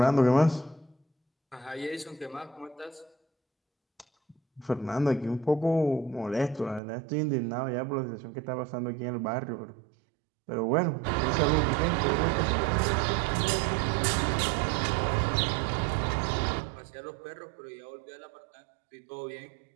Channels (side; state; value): left; drops out; at 6.8 s